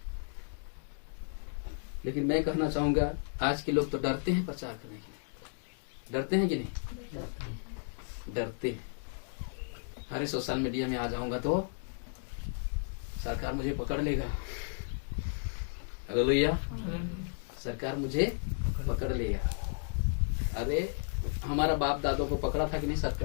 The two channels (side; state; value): right; silent; digital silence